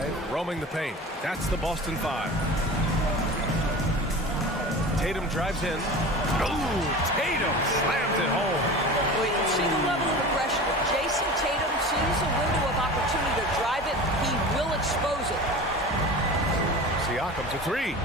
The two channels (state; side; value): normal; both; correlation 0.34